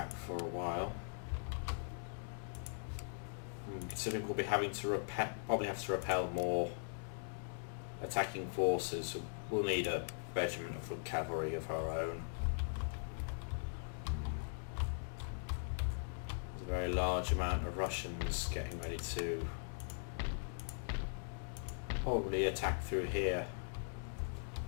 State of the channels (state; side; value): silent; right; digital silence